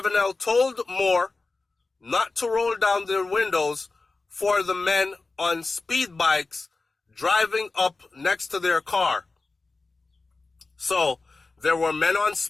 told Moore not to roll down their windows for the men on speed bikes driving up next to their car. So there were men on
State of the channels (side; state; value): right; quieter; 3.7 dB